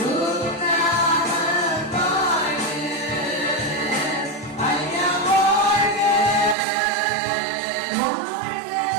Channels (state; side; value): drops out; left; at 6.6 s